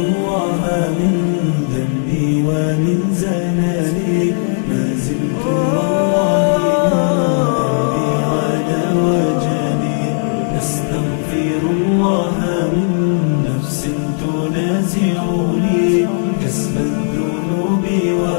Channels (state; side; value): silent; right; digital silence